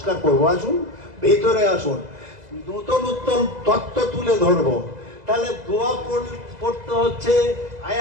করব, আসুন ভিতরে আসুন, নতুন নতুন তত্ত্ব তুলে ধরবো। তাহলে দোয়া পড়তে হচ্ছে, আয়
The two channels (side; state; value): left; late; 2.0 ms